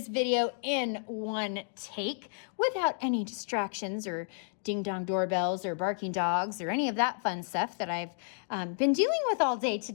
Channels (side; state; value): right; silent; digital silence